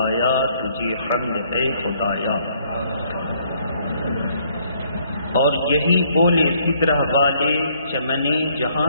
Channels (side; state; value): both; inverted; correlation -0.66